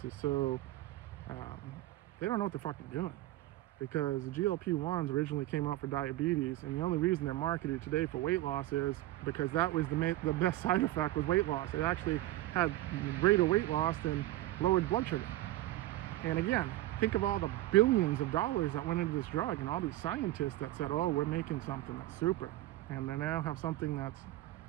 is so, they don't know what they're fucking doing. Because the GLP-1s originally came out for diabetes, and the only reason they're marketed today for weight loss is because that was the best side effect was weight loss. It actually had greater weight loss than lowered blood sugar. And again, think of all the billions of dollars that went into this drug, and all these scientists that said, oh, we're making something that's super. And they now have something that's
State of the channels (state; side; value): quieter; left; 16.2 dB